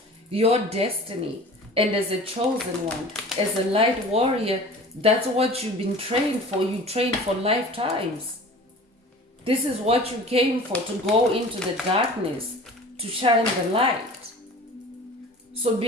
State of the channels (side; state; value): both; normal; correlation 0.41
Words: your destiny. And as a chosen one, as a light warrior, that's what you've been trained for. You trained for lifetimes. This is what you came for, to go into the darkness, to shine the light. So